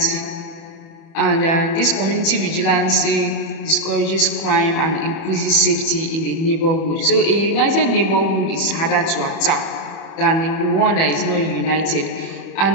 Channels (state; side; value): late; right; 31 ms